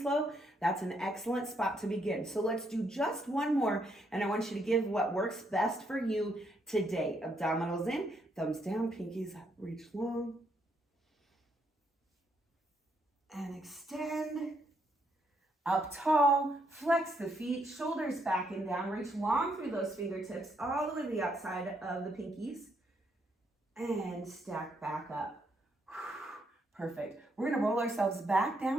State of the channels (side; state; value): both; normal; correlation 0.75